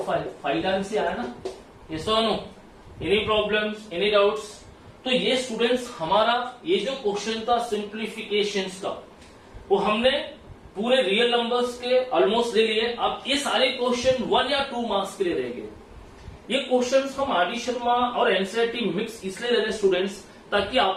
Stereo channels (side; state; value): both; identical; correlation 1.00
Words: 5 टाइम्स से आया ना? यस और no? Any problems, any doubts? तो ये स्टूडेंट्स हमारा ये जो क्वेश्चन था सिंप्लीफिकेशंस का, वो हमने पूरे रियल नंबर्स के ऑलमोस्ट ले लिए। अब ये सारे क्वेश्चन 1 या 2 मार्क्स के लिए रह गए। ये क्वेश्चंस हम आर डी शर्मा और एनसीईआरटी मिक्स इसलिए ले रहे स्टूडेंट्स ताकि